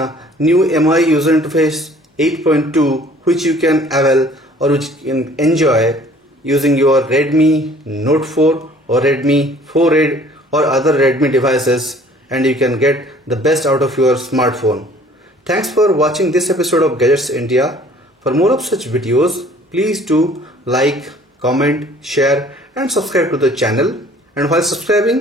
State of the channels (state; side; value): normal; both; correlation 0.54